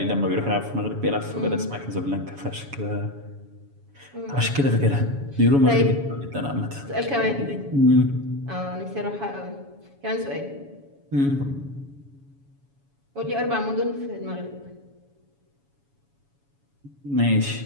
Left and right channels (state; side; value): late; left; 7.1 ms